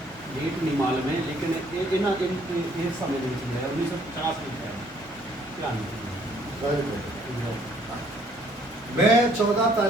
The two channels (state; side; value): normal; both; correlation 0.63